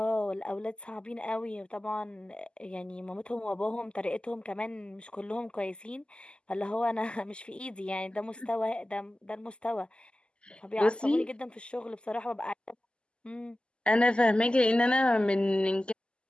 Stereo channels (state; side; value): late; right; 0.050 ms